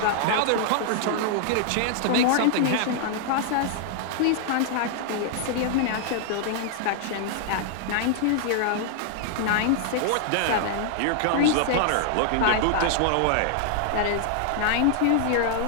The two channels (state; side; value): different; both; correlation -0.01